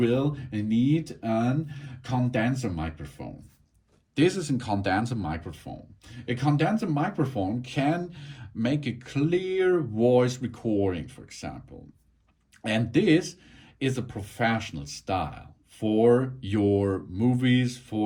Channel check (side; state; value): both; identical; correlation 1.00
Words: need a condenser microphone. This is a condenser microphone. A condenser microphone can make a clear voice recording, for example. And this is a professional style for your movies,